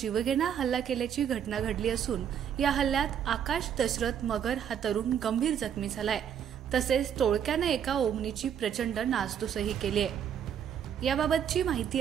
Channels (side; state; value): left; quieter; 8.7 dB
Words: हल्ला केल्याची घटना घडली असून या हल्ल्यात आकाश दशरथ मगर हा तरुण गंभीर जखमी झालाय। तसेच टोळक्याने एका ओमनीची प्रचंड नासधूसही केली आहे। याबाबतची